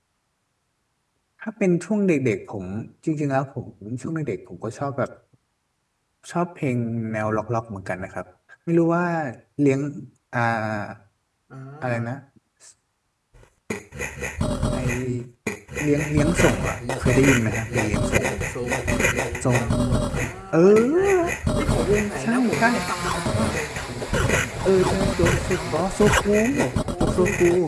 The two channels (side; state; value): both; identical; correlation 1.00